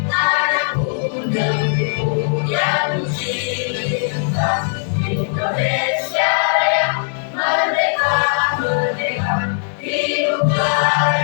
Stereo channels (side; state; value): right; silent; 58 dB below the other